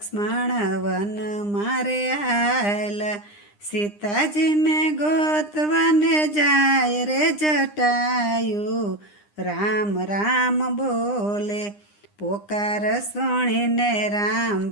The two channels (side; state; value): right; late; 9.8 ms